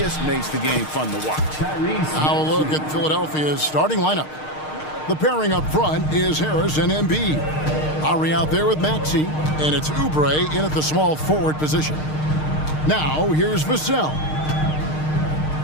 makes the game fun to watch. Now a look at Philadelphia's starting lineup. The pairing up front is Harris and Embiid. Ari out there with Maxey, and it's Oubre in at the small forward position. Now here's Vassell.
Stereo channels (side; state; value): right; late; 6.5 ms